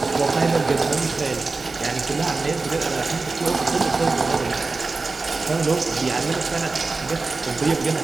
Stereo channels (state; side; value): quieter; left; 3.8 dB